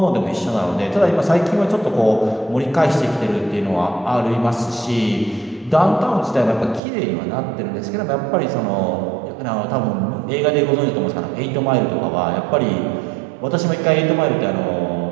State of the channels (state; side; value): drops out; left; at 6.8 s